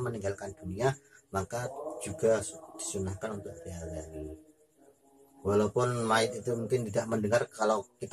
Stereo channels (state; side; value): identical; both; correlation 1.00